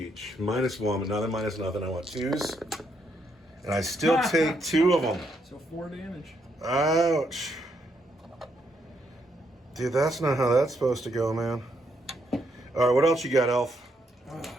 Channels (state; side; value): normal; both; correlation 0.76